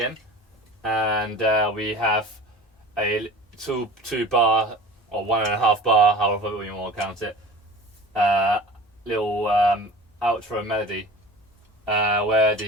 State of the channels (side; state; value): both; normal; correlation 0.39